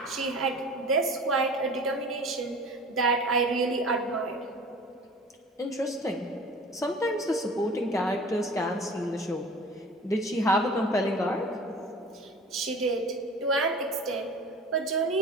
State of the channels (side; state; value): both; normal; correlation 0.42